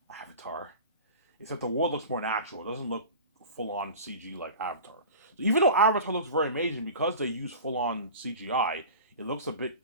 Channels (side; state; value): both; inverted; correlation -0.36